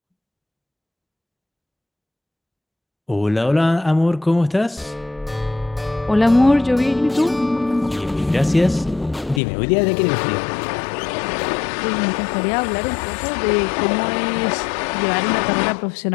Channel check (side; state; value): right; drops out; at 9.4 s